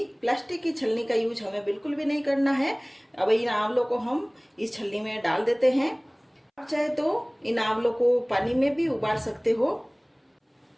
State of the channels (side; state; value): both; identical; correlation 1.00